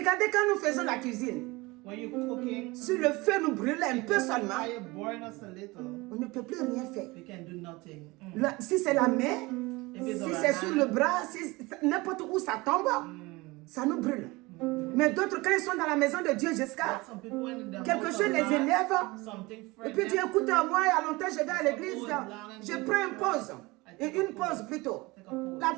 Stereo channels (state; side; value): quieter; left; 22.8 dB